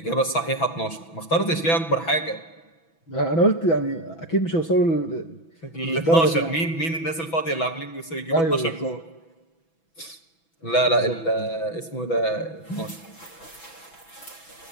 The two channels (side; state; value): right; late; 6.1 ms